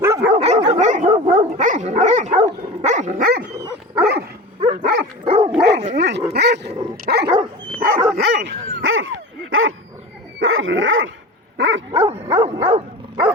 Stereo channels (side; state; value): both; normal; correlation 0.32